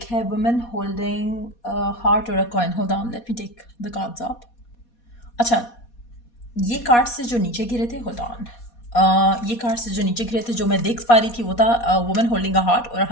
है वुमेन होल्डिंग हार्ट और a coin. Hold on, let me take the cards up. अच्छा, ये कार्ड्स से जो नीचे गिरे थे, होल्ड ऑन, ये कार्ड्स से जो नीचे गिरे थे जो मैं देख पा रही थी वो था वुमेन होल्डिंग अ हार्ट और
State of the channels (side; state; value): right; late; 4.2 ms